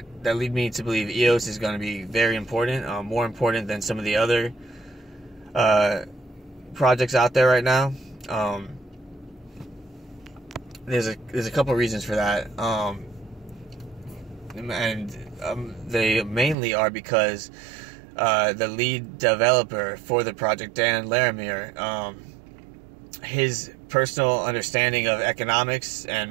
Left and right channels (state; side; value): drops out; left; at 16.6 s